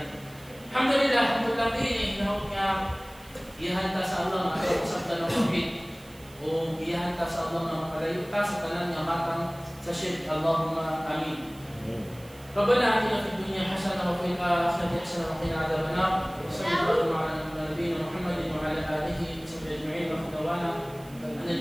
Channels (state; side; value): noise; right; hiss, 24 dB below the sound